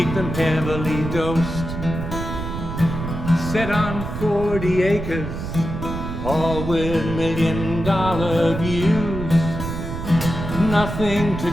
them heavily dosed. Set on 40 acres, all with $1 million views. Nothing to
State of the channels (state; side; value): noise; right; rumble, 6 dB below the sound